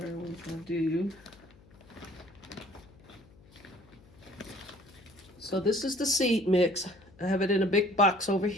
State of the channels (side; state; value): left; noise; hum, 26 dB below the sound